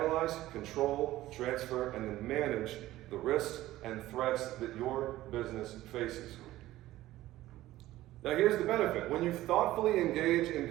control, transfer, and then manage the risks and threats that your business faces. Now here's the benefit. When you thoughtfully engage in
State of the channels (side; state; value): left; quieter; 15.7 dB